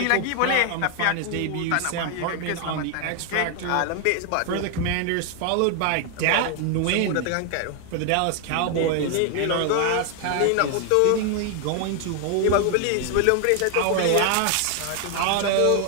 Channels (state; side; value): different; both; correlation 0.00